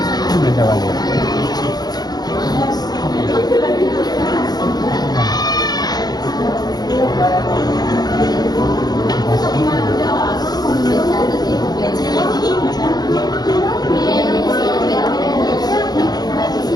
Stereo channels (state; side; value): late; right; 0.19 ms